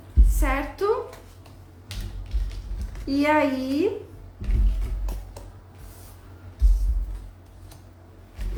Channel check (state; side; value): identical; both; correlation 1.00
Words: certo? E aí,